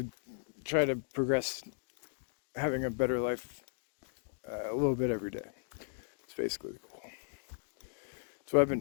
try to progress having a better life a little bit every day. It's basically the goal. That's what I've been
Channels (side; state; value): right; silent; digital silence